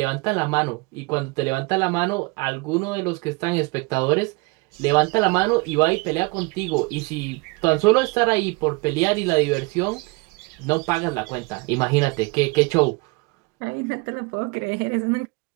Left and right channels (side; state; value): left; quieter; 28.0 dB